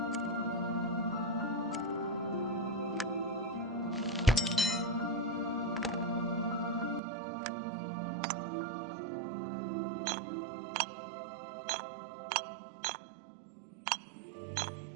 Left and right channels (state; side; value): drops out; left; at 7.0 s